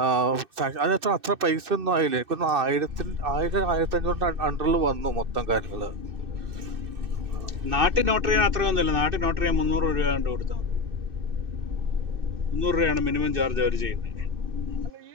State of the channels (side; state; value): left; late; 2.6 ms